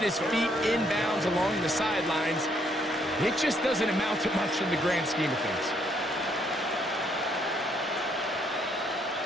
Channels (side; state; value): both; normal; correlation 0.70